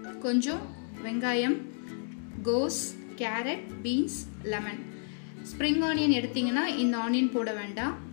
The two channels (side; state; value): right; silent; 57 dB below the other